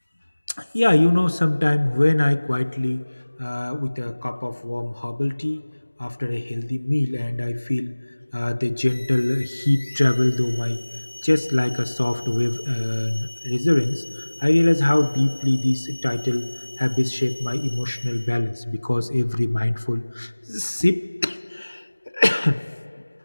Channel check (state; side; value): inverted; both; correlation -1.00